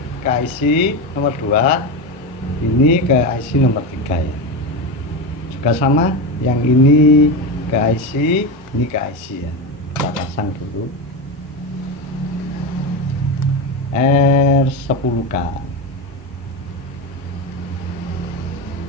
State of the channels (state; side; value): normal; both; correlation 0.17